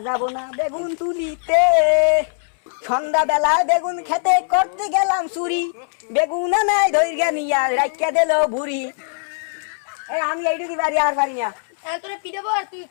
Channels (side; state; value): right; silent; 65 dB below the other